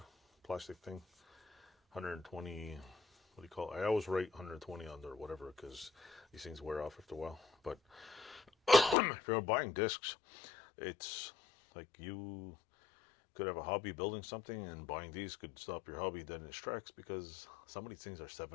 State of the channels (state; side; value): drops out; right; at 9.0 s